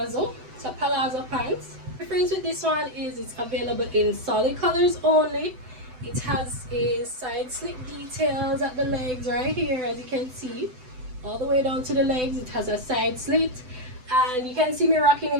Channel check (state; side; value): late; left; 7.9 ms